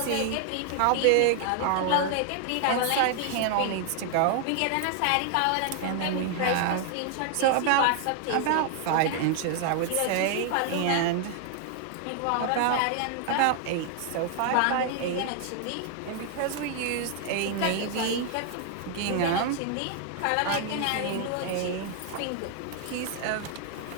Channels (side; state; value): both; different; correlation 0.00